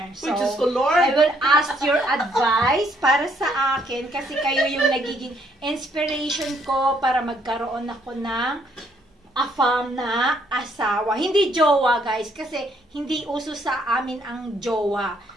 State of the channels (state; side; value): normal; both; correlation 0.69